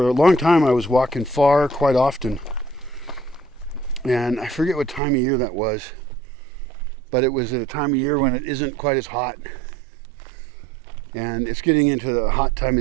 a long time, I was walking far quite often. And I forget what time of year that was, but it was at a time of year when it isn't quite as hot. And it's getting into the hot time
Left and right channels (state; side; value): drops out; left; at 5.0 s